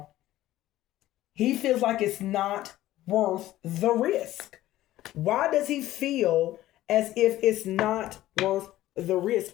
He feels like it's not worth the risk. Why does he feel as if it's not worth the risk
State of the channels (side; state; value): right; quieter; 14.9 dB